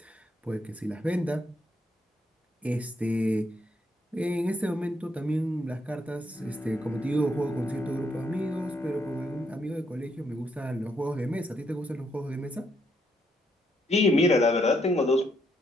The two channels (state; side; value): normal; both; correlation 0.75